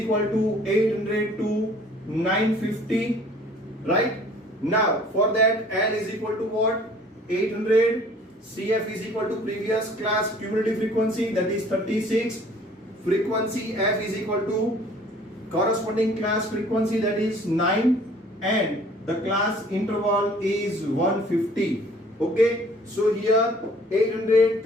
to 800 to 950, right? Now for that L is equal to what? 800. CF is equal to previous class cumulative frequency, that is 36. Frequency F is equal to corresponding class frequency, that is 9, and the class interval is 150. Okay, so here 800,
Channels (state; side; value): normal; both; correlation 0.53